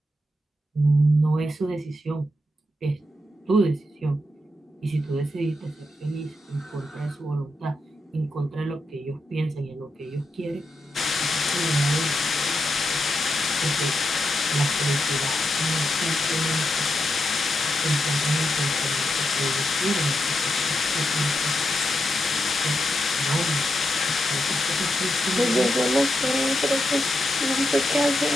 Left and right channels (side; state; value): both; normal; correlation 0.85